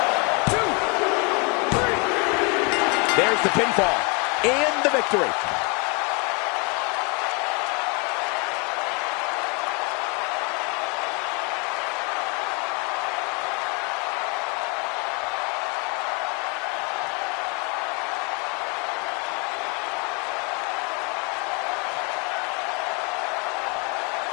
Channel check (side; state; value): right; quieter; 30.6 dB